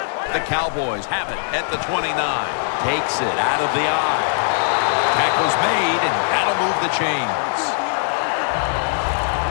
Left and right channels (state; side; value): silent; right; digital silence